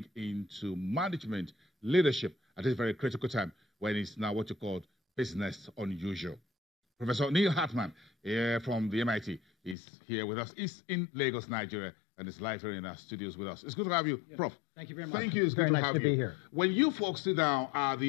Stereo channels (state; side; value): drops out; right; at 9.8 s